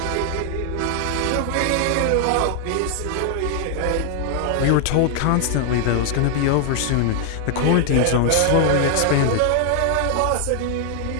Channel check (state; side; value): different; both; correlation 0.00